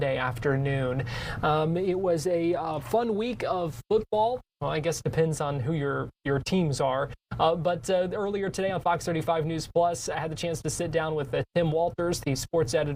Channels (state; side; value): identical; both; correlation 1.00